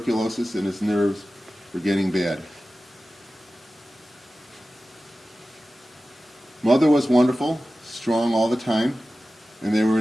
and his nerves were getting bad. Mother was wonderful, strong all the time, and they were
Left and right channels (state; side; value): normal; both; correlation 0.95